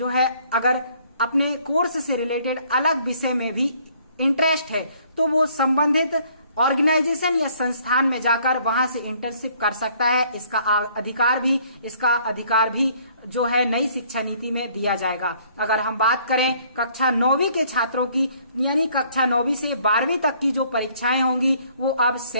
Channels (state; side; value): inverted; both; correlation -0.61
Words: है अगर अपने कोर्स से रिलेटेड अलग विषय में भी इंटरेस्ट है तो वो संबंधित ऑर्गेनाइजेशन या संस्थान में जाकर वहां से इंटर्नशिप कर सकता है। इसका अधिकार भी जो है नई शिक्षा नीति में दिया जाएगा। अगर हम बात करें कक्षा 9वीं के छात्रों की, यानी कक्षा 9वीं से 12वीं तक की जो परीक्षाएं होंगी वो अब